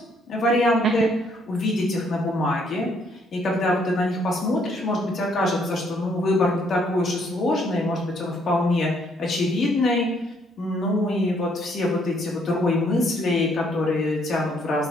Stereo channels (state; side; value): normal; both; correlation 0.68